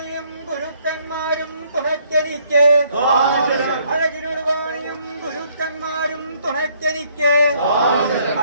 ഗുരുക്കന്മാരും തുണയ്ക്കെനിക്ക് അഴകിനോട് വാണിയും ഗുരുക്കന്മാരും തുണയ്ക്കെനിക്ക്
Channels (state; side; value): inverted; both; correlation -0.66